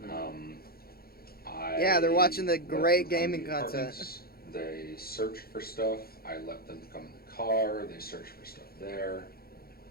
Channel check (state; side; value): late; right; 0.44 ms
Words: Yeah, they're watching the let great them come gaming to the content. apartments. They searched for stuff. I let them come in the car. They searched for stuff there.